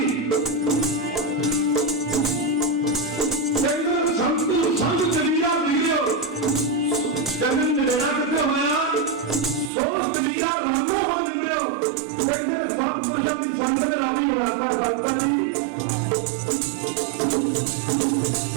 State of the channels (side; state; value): left; drops out; at 9.7 s